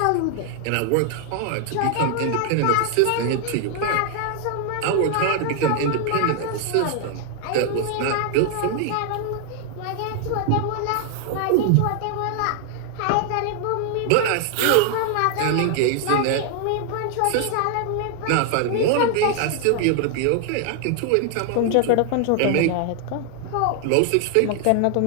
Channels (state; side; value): different; both; correlation 0.00